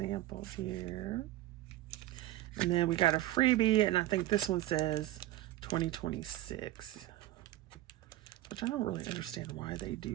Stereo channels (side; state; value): left; quieter; 14.9 dB